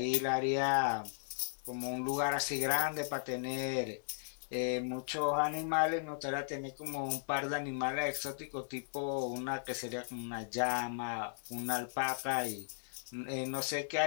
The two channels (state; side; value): silent; right; 53 dB below the other